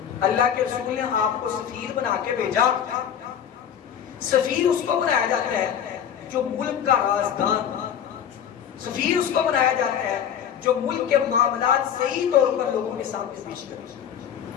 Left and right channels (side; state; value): right; quieter; 8.9 dB